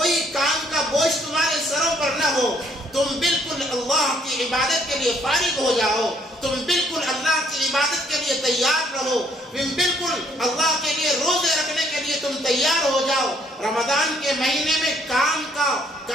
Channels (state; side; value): normal; both; correlation 0.66